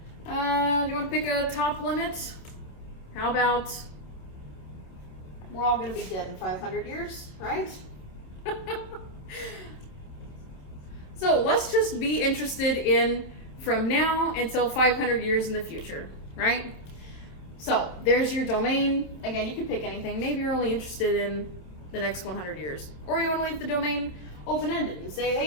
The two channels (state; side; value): late; right; 28 ms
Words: Do you want to pick a top limit? How about we're all going to be dead in 500 years, right? So let's just be interested in from now until 500 years in the future, right? So there's your domain. Again, you can pick anything. Maybe you're only interested in the next 100 years. Or you want to leave the domain open-ended and say,